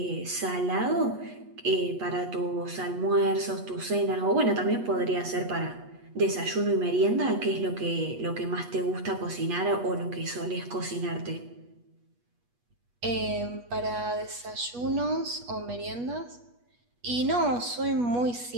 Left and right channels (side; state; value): left; late; 8.3 ms